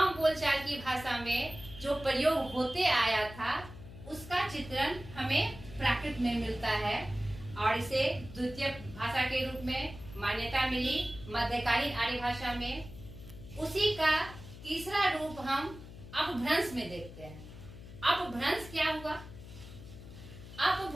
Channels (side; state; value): left; noise; hum, 15 dB below the sound